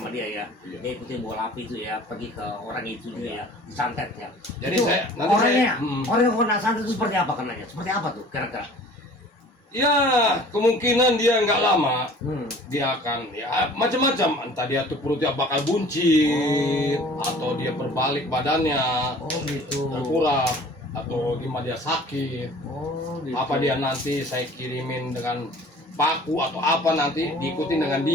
dia ya. Iya. Dia ikutin bola api itu ya, pergi ke orang itu juga ya, disantet ya. Jadi Itu nanti orangnya, saya- orang yang kena santet itu seperti apa kenanya? Seperti apa tuh kira-kira? Ya, kemungkinan dia nggak lama dia akan ya macam-macam, entah dia tuh perutnya bakal buncit Oh. atau dia berbalik badannya Oh gitu. terkurap atau gimana dia sakit. Oh gitu. Apa dia nanti saya kirimin dengan paku atau apa nanti diikuti dengan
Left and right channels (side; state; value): both; normal; correlation 0.48